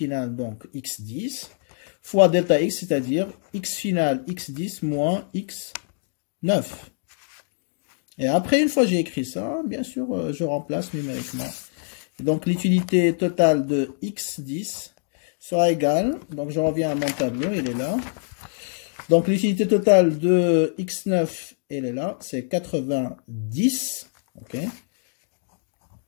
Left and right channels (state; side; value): silent; right; digital silence